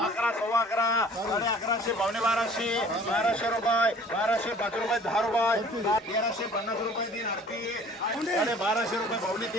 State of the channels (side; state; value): both; normal; correlation 0.50